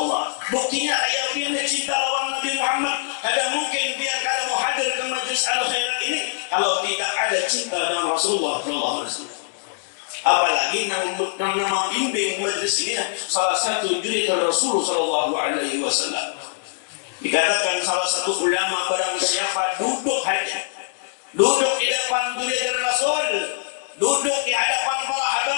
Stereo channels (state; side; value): silent; right; digital silence